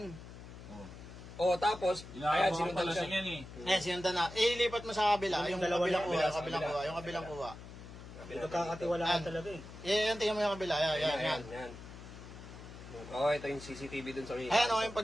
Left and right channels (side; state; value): left; noise; hum, 14 dB below the sound